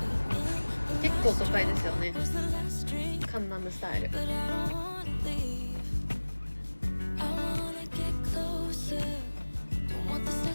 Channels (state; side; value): inverted; both; correlation -1.00